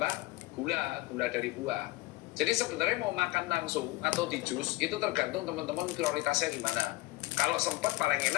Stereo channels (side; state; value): right; quieter; 20.2 dB